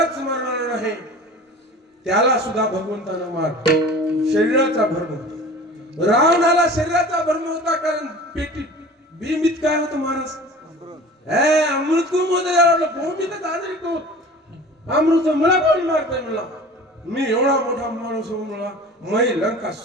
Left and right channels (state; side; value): normal; both; correlation 0.41